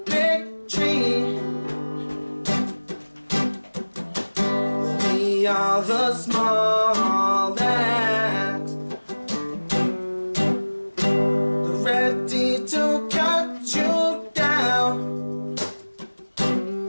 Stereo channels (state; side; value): inverted; both; correlation -1.00